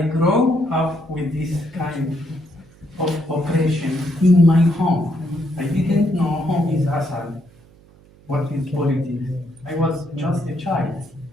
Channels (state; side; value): noise; right; hum, 27 dB below the sound